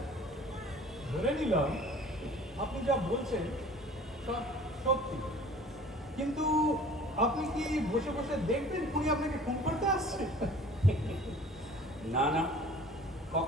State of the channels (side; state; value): both; normal; correlation 0.48